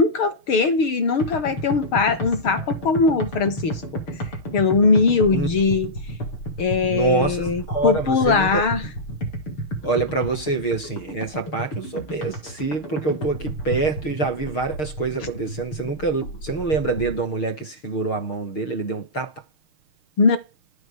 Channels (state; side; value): late; right; 6.4 ms